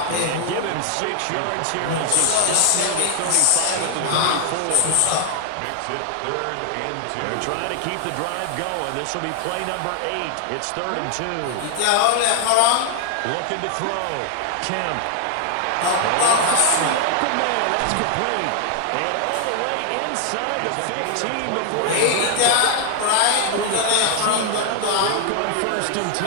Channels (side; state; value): both; different; correlation 0.00